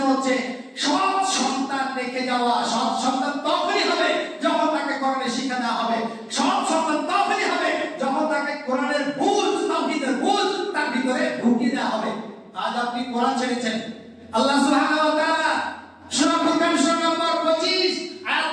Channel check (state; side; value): identical; both; correlation 1.00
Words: হচ্ছে সৎ সন্তান রেখে যাওয়া। সৎ সন্তান তখনই হবে যখন তাকে কোরআনের শিক্ষা দেওয়া হবে। সৎ সন্তান তখনই হবে যখন তাকে কোরআনের বুঝ, তাওহীদের বুঝ তার ভিতরে ঢুকিয়ে দেওয়া হবে। আজ আপনি কোরআন ছেড়েছেন, আল্লাহ সুবহানাহু ওয়া তাআলা সূরা ফুরকান সূরা নম্বর 25 আয়াত